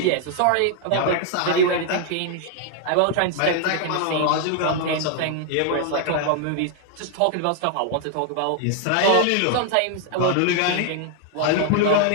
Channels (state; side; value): different; both; correlation 0.00